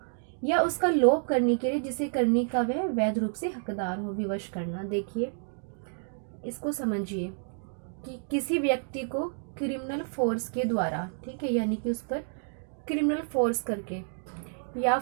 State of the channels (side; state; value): left; silent; 58 dB below the other